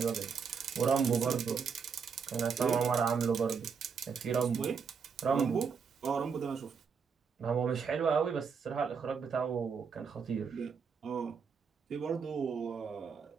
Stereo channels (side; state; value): left; quieter; 6.0 dB